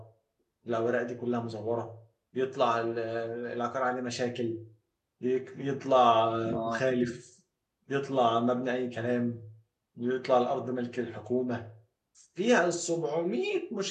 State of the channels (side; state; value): both; identical; correlation 1.00